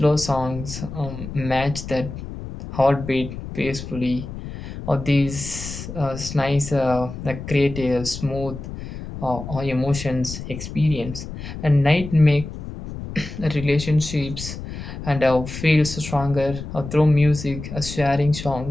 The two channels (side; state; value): left; noise; rumble, 10 dB below the sound